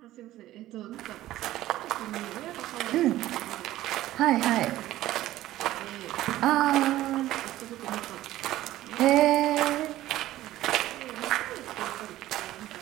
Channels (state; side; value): quieter; left; 15.0 dB